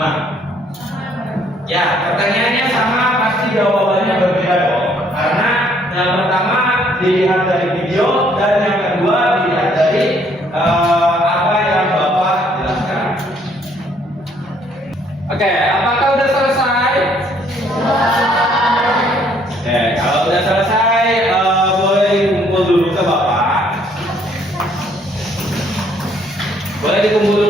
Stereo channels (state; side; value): normal; both; correlation 0.65